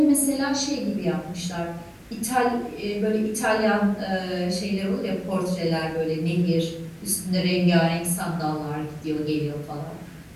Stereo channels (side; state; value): both; identical; correlation 1.00